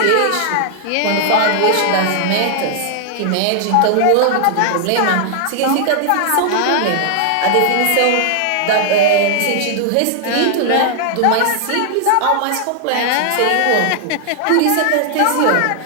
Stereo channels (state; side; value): different; both; correlation 0.00